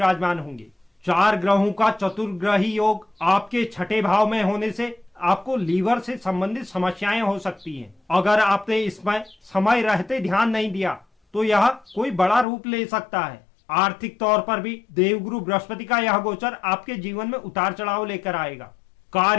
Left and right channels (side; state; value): right; drops out; at 12.5 s